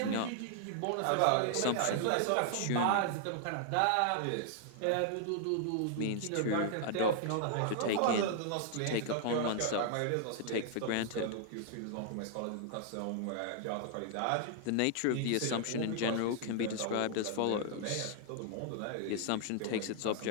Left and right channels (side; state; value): both; different; correlation -0.01